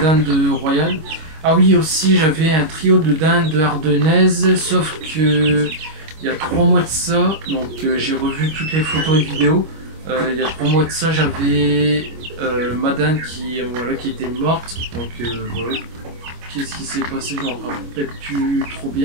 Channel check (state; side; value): late; left; 25 ms